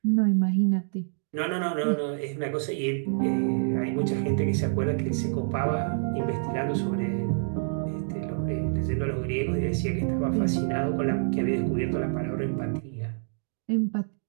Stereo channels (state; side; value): silent; left; digital silence